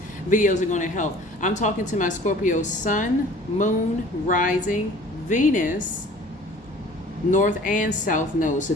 videos are going to help. I'm talking to my Scorpio sun, moon, rising, Venus, north and south node. So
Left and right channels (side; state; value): both; normal; correlation 0.48